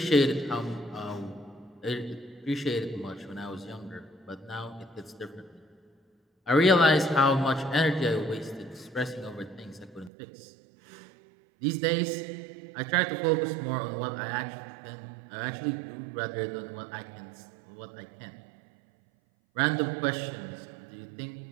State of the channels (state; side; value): drops out; left; at 10.1 s